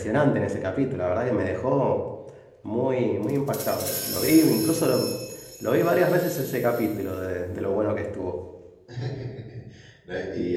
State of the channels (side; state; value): both; identical; correlation 1.00